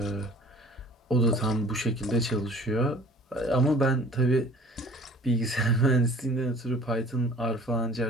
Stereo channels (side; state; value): both; normal; correlation 0.49